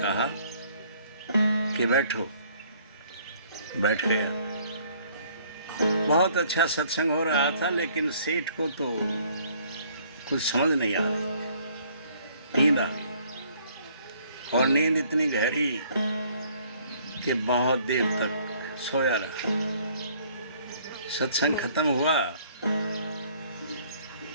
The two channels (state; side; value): inverted; both; correlation -0.61